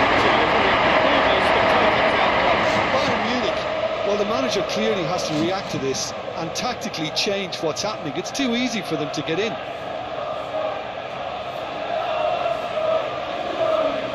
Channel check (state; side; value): identical; both; correlation 1.00